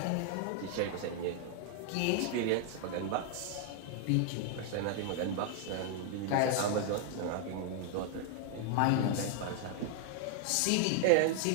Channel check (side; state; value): both; different; correlation 0.00